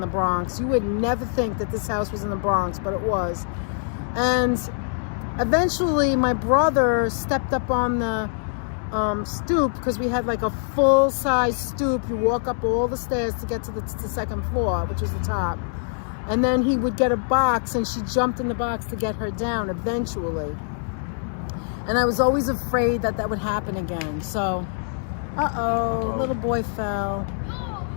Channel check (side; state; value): right; silent; digital silence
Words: Bronx. You would never think that this house was in the Bronx, but it was. And eventually my brother stepped up on the stoop, because we had like a full-size stoop. You walk up all the stairs to get to the second floor, which was the top. And then he would get a box, and she jumped in the box to get her down eventually. And I was always afraid that would happen again. So, little boy fell.